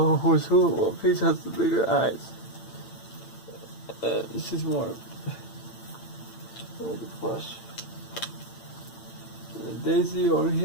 who's who? Well, Peach has the bigger eyes. She's more... the flesh. And then Daisy over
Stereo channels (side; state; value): right; late; 8.9 ms